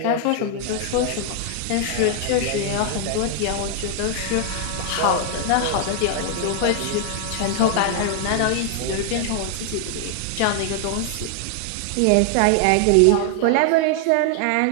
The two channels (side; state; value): both; different; correlation 0.00